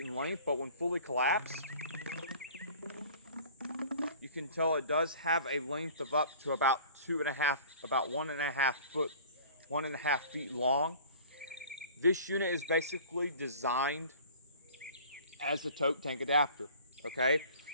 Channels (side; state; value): both; inverted; correlation -0.46